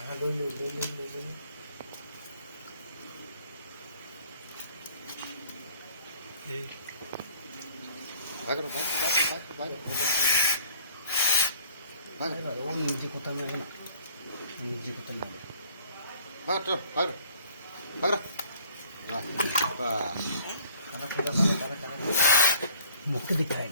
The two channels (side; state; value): both; inverted; correlation -0.57